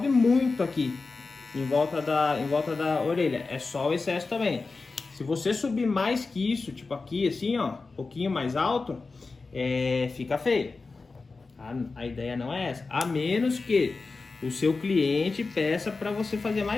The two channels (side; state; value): right; quieter; 4.0 dB